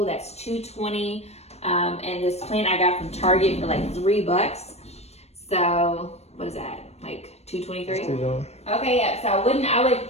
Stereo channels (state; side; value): late; right; 0.31 ms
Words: that's $220. And this plant I got from Target for like $3. So what is that? Like $223? Okay, yeah. So I would